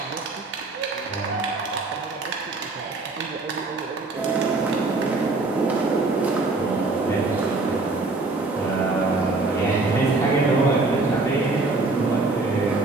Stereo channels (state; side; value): quieter; left; 3.4 dB